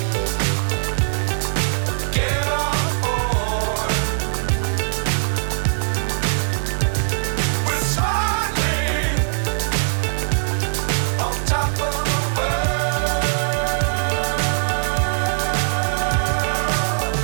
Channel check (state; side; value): silent; left; 55 dB below the other